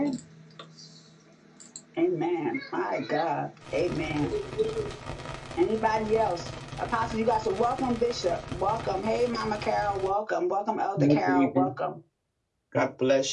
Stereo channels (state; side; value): identical; both; correlation 1.00